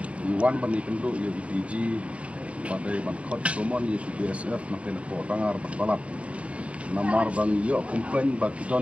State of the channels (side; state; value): left; late; 0.063 ms